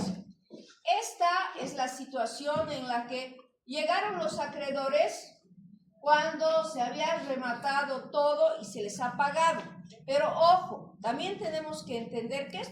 Esta es la situación en la que llegaron los acreedores cuando se había rematado todo y se les ha pagado. Pero ojo, también tenemos que entender que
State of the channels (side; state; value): both; identical; correlation 1.00